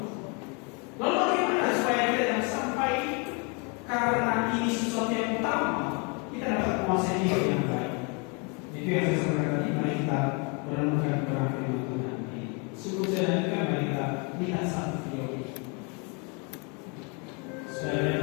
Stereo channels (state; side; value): quieter; right; 33.6 dB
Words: Lalu bagaimana supaya kita jangan sampai karena ini sesuatu yang utama kita dapat menguasai hidup yang baik? Itu yang saya sampaikan tadi. Mari kita merenungkan kepada firman Tuhan. Sebelum saya lanjutkan, mari kita lihat satu video ini supaya